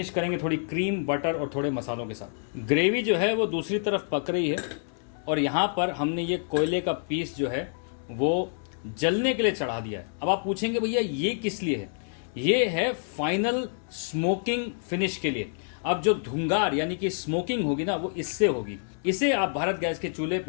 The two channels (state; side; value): silent; right; digital silence